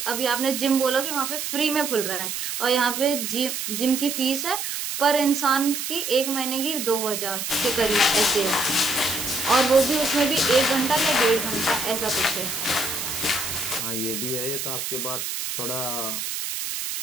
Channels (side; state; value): right; noise; hiss, 4 dB below the sound